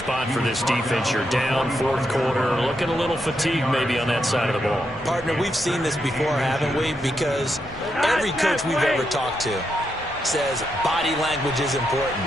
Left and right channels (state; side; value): normal; both; correlation 0.82